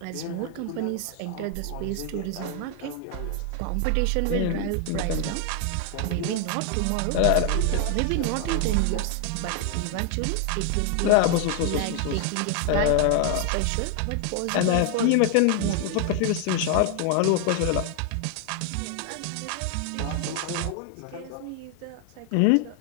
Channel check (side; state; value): both; different; correlation 0.00